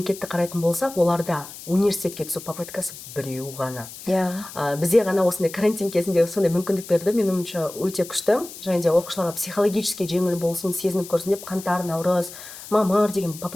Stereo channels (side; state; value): left; noise; hiss, 14 dB below the sound